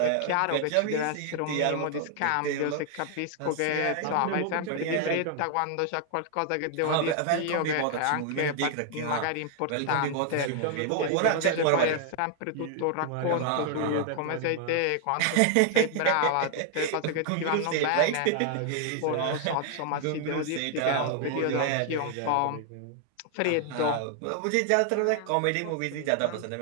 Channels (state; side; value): different; both; correlation 0.00